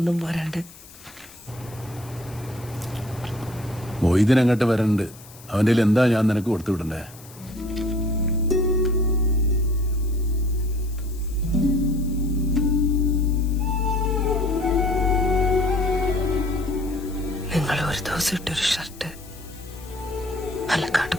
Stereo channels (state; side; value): noise; left; hiss, 21 dB below the sound